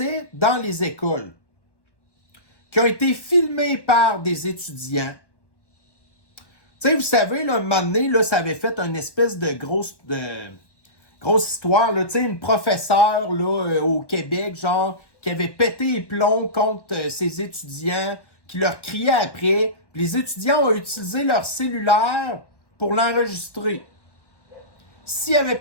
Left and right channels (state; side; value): late; right; 1.1 ms